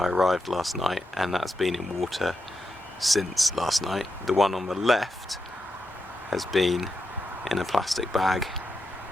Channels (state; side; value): normal; both; correlation 0.86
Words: arrived last night, and that's been in water since last night. The one on the left has been in a plastic bag